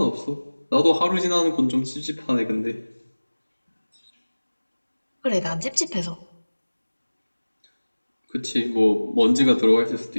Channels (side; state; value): both; inverted; correlation -1.00